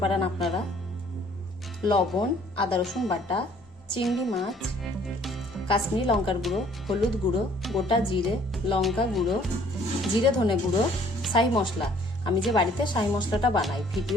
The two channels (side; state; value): both; normal; correlation 0.58